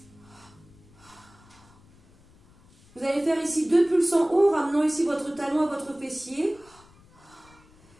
Vous allez faire ici 2 pulses en haut, ramenant ici votre talon à votre fessier.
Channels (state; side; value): noise; left; rumble, 27 dB below the sound